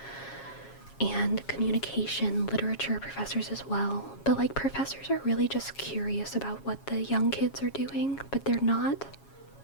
and communication, literature professors as well. But like, professors are really just curious about what the young kids are doing, but they're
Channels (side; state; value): right; late; 7.3 ms